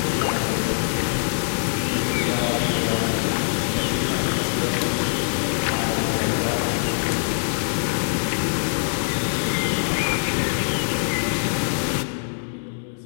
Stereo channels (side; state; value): right; silent; 63 dB below the other